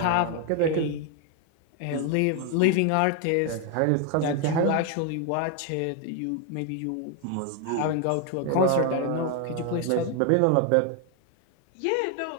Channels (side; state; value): both; different; correlation 0.01